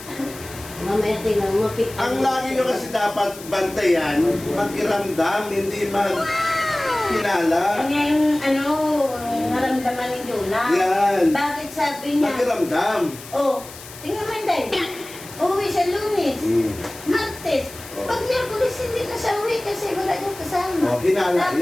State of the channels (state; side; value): noise; left; hiss, 16 dB below the sound